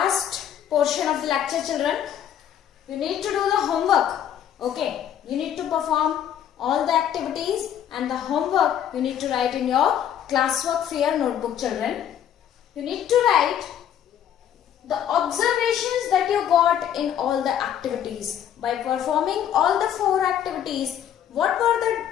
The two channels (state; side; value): quieter; right; 9.9 dB